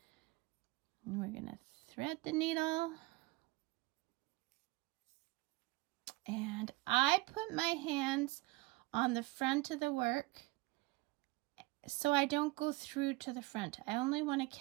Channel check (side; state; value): left; quieter; 22.2 dB